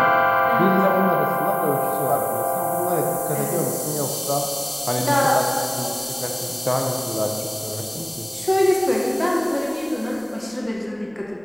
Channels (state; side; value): noise; right; rumble, 29 dB below the sound